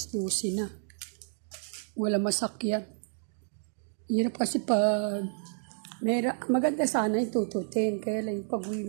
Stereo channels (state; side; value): silent; left; digital silence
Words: 12 na. Wala masakyan. Hirap kasi pag maganda sana yung tututin, kaya lang yung pag-uwi